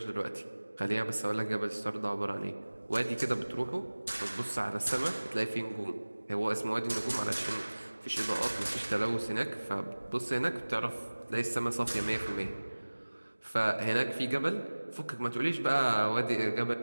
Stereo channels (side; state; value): both; inverted; correlation -1.00